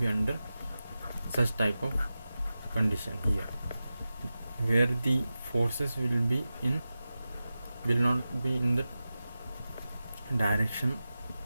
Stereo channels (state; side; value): inverted; both; correlation -0.94